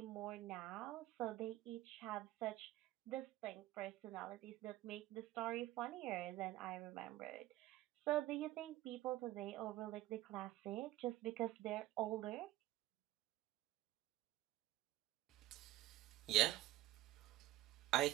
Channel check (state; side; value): quieter; left; 15.3 dB